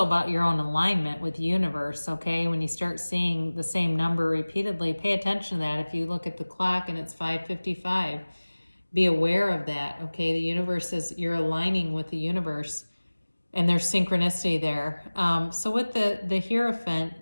about your own alignment with the universe, okay? When you start seeing the same number repeatedly, pay attention to that. If you look at the clock and it's 5:55, be aware of that, okay? The universe you're aligning with the universe. And there's synchronicity there. So with the Hierophant,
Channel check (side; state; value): both; inverted; correlation -1.00